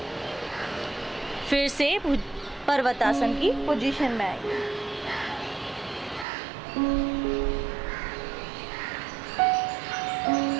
फिर से पर्वतासन की पोजीशन में आएंगे।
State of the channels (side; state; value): left; drops out; at 6.2 s